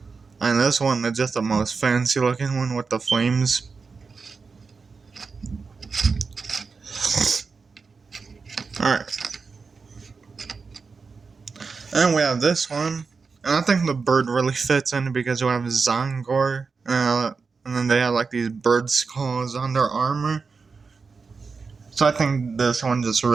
and this one is just the most fancy looking one with the flames. Alright. And we have this one. And I think the bird really fits in because we have Zangor. And then they have like these bird skulls on their armor. So I think this one just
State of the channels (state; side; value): quieter; left; 4.8 dB